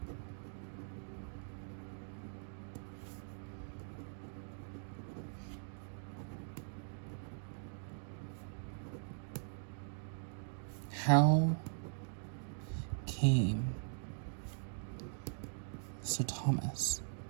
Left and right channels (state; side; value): silent; left; digital silence